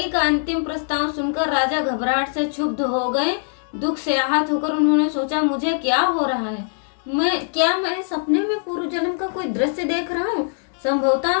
का अंतिम प्रस्ताव सुनकर राजा घबराहट से क्षुब्ध हो गए। दुख से आहत होकर उन्होंने सोचा, मुझे क्या हो रहा है? मैं सपने में पूर्व जन्म का कोई दृश्य देख रहा हूँ?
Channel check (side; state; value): right; silent; 64 dB below the other